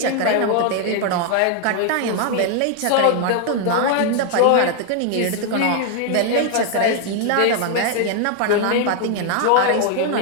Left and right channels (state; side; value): different; both; correlation 0.00